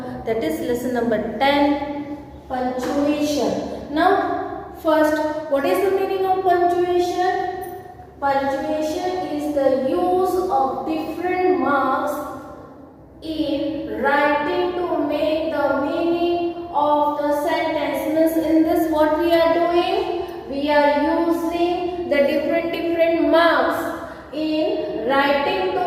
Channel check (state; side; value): identical; both; correlation 1.00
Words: that is lesson number 10, punctuation. Now, first, what is the meaning of punctuation? Punctuation is the use of different marks in writing to make the meaning of the sentence. Means in this what we are doing? We are using the different marks in writing